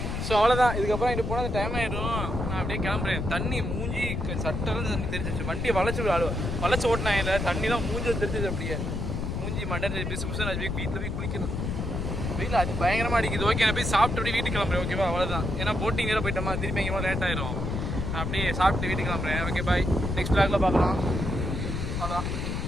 ஸோ அவ்வளோதான். இதுக்கப்புறம் இங்கே போனால் டைம் ஆகிடும். நான் அப்படியே கிளம்புறேன். தண்ணி மூஞ்சி சட்டெல்லாம் தண்ணி தெரிஞ்சிச்சு. வண்டியை வளைச்சி ஓட்டினாங்க. இல்லை தண்ணிலாம் மூஞ்சி தெரிஞ்சிச்சு. அப்படியே மூஞ்சி மண்டை பிசு பிசு. நான் வீட்டில் போய் குளிக்கணும். வெயில் அது பயங்கரமாக அடிக்குது. ஓகே நான் போய் சாப்பிட்டு அப்படியே வீட்டுக்கு கிளம்புறேன். ஓகேவா அவ்வளோதான். ஏன்னா போட்டிங் வேறு போயிட்டோமா. திருப்பி எங்கேயோ லேட் ஆயிரும். நான் அப்படியே சாப்பிட்டு வீட்டுக்கு கிளம்புறேன். Okay bye. நெக்ஸ்ட் பிளாக்ல பார்க்கலாம்.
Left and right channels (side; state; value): left; noise; rumble, 2 dB below the sound